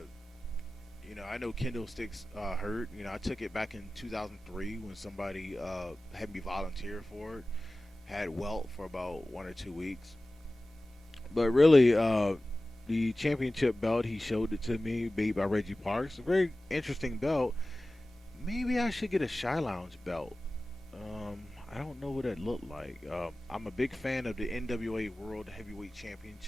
I know kendo sticks hurt. I took it back in 2003 when somebody had me volunteer for it. Had welt for about 1 or 2 weeks. But really, the championship belt, he showed it to me, made by Reggie Parks. A very interesting belt. Maybe I should get a ShiLounge belt. I don't know what that looked like. I'm a big fan of the NWA World Heavyweight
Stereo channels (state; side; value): normal; both; correlation 0.97